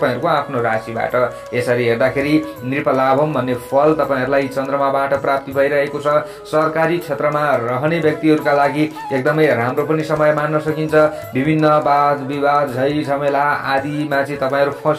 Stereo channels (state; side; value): identical; both; correlation 1.00